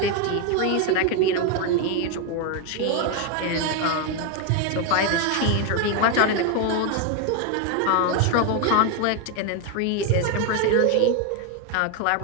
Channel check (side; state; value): both; different; correlation 0.01